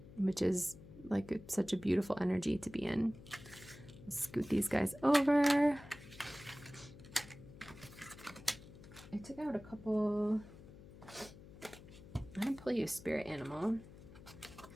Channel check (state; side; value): noise; left; hum, 17 dB below the sound